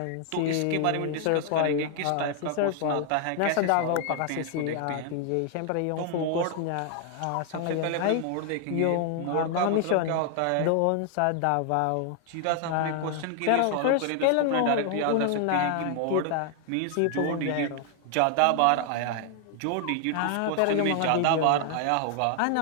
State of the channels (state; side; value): different; both; correlation 0.00